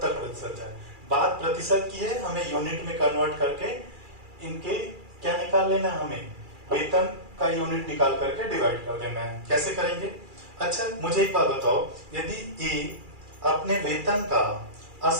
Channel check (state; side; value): late; left; 2.4 ms